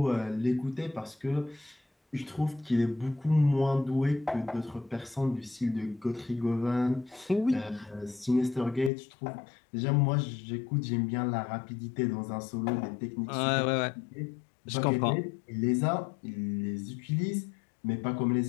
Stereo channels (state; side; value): drops out; right; at 8.9 s